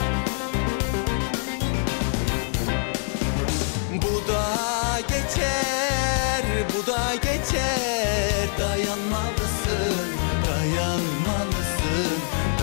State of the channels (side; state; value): right; silent; digital silence